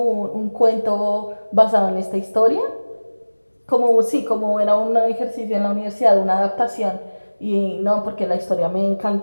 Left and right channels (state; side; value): inverted; both; correlation -1.00